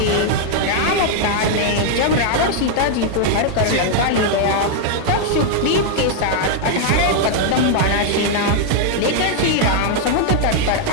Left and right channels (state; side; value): different; both; correlation 0.00